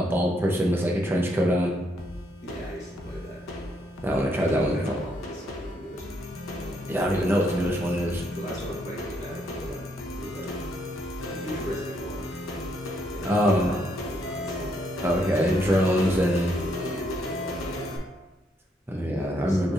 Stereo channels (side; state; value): both; normal; correlation 0.74